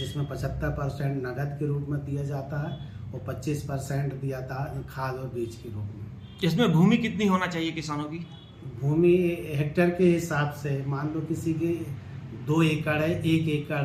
75% नगद के रूप में दिया जाता है और 25% दिया था खाद और बीज के रूप में। इसमें भूमि कितनी होना चाहिए किसानों की? भूमि हेक्टेयर के हिसाब से, मान लो किसी की 2 एकड़ है, 1 एकड़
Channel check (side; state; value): both; identical; correlation 1.00